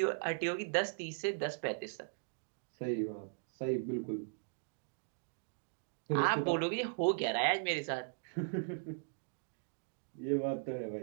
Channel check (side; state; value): left; silent; digital silence